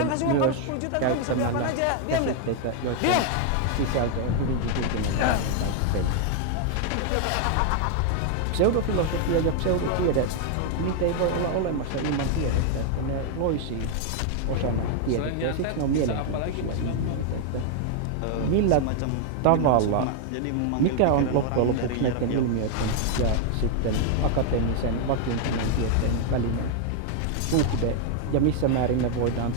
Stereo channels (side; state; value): both; different; correlation 0.00